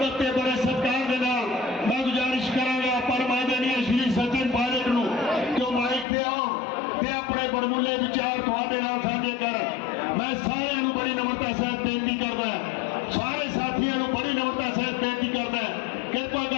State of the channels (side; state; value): right; drops out; at 6.1 s